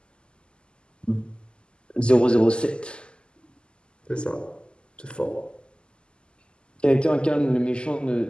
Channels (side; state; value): right; late; 0.050 ms